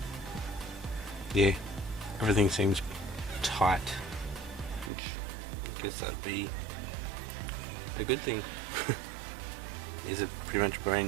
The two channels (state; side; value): drops out; left; at 4.9 s